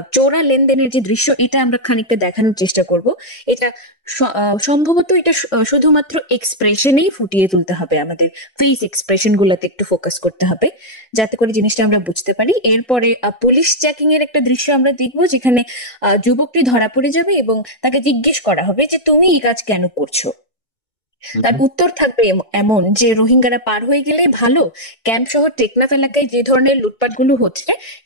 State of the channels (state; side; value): late; right; 1.7 ms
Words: চোরা লেনদেনের যে দৃশ্য, এটা আমরা খানিকটা দেখানোর চেষ্টা করব। এটা সম্ভবত এটা শুধুমাত্র এক্সপ্রেশনেই ফুটিয়ে তুলতে হবে, আমাদের ফেস এক্সপ্রেশন গুলাতে একটু ফোকাস করতে হবে, যাতে করে জিনিসটা আমরা বুঝতে পারি। এরপরে পুলিশ চেকিং এর একটা দৃশ্য আমরা দেখবো, যেখানে যুবকটি ধরা পড়ে যাবে এবং তাকে জিজ্ঞেস করা হবে যে তুমি এই কাজ কেন করছো। তার উত্তর থাকবে এমন যে রোহিঙ্গারা পার হয়ে গেলেই ভালো। ক্যাম্প শহর টেকনাফ এলাকায় যে ধরনের লুটপাটগুলো হচ্ছে,